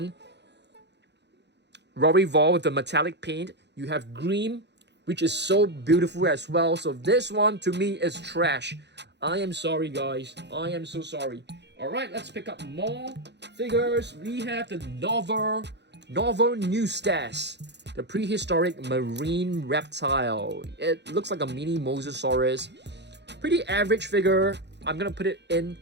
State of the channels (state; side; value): late; left; 0.50 ms